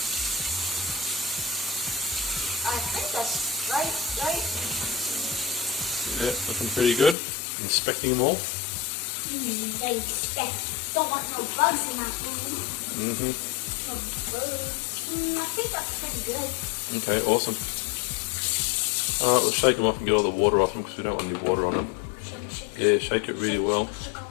I think that's right. Yeah, looking pretty good. Inspecting them all. They expect. Don't want no bugs in my food. No bugs. I think that's pretty good. Okay, awesome. Alright, we'll shake them off and get all the water off them because we don't want any water on them. Shake it. Yeah, shake it really well. Shake it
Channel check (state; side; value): drops out; right; at 7.2 s